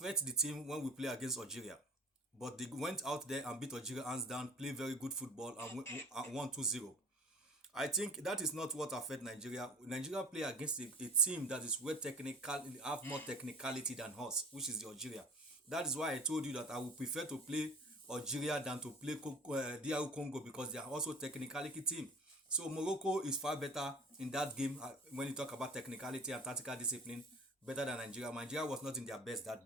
the team when we play against Algeria. But they went out there and beat Algeria hands down, play very good football, and won 2-0. I think that is not what affect Nigeria. Nigeria play against a team that is have more technicality than us, which is the Algeria. That is why I told you that I would prefer to play Algeria than to play DR Congo, because they are also technicality team. So Morocco is far better in that game when you talk about technicality and tactical discipline, better than Nigeria. Nigeria was not in their best that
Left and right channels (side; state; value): both; normal; correlation 0.42